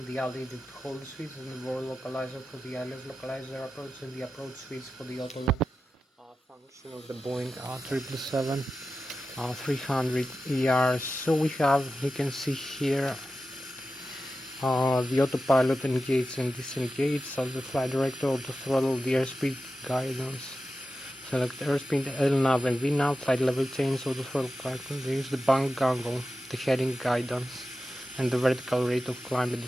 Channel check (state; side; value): normal; both; correlation 0.92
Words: the altitude hold switch, and the roll localizer for the ILS localizer approach, and the approach switch for the auto function of the Boeing 777. 300 ER. So we have, you can see here, the autopilot engage and disengage, so the flight director, auto throttle, the airspeed guidance, select airspeed, LNAV and VNAV, flight level change, auto throttle guidance, the bank angle, the heading guidance, and the vertical rate of climb and